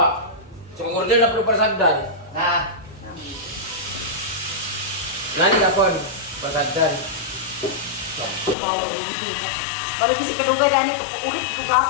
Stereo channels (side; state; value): right; drops out; at 8.6 s